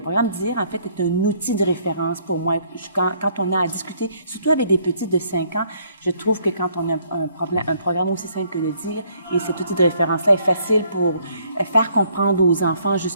programme DIR, en fait, est un outil de référence pour moi. Quand on a à discuter, surtout avec des petits de 5 ans, je trouve que quand on a un programme aussi simple que le DIR, et cet outil de référence-là est facile pour faire comprendre aux enfants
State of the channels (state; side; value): inverted; both; correlation -0.65